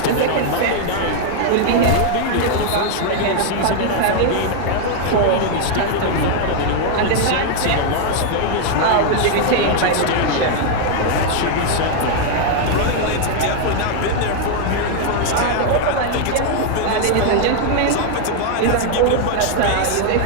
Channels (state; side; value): different; both; correlation 0.00